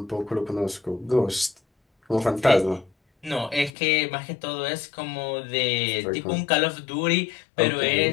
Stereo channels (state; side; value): drops out; right; at 3.7 s